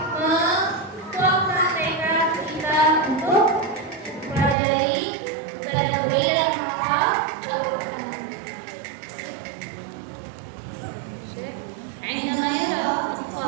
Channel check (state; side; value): drops out; left; at 4.5 s